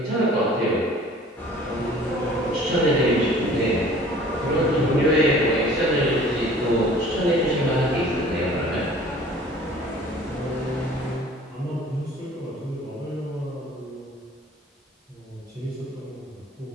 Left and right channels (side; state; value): both; normal; correlation 0.49